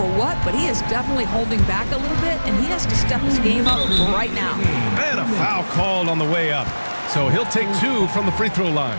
what, but he is definitely holding back a little bit, and he has to step his game up right now. And a foul called on the way up. So he'll take 2 from the free throw line.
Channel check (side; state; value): both; inverted; correlation -1.00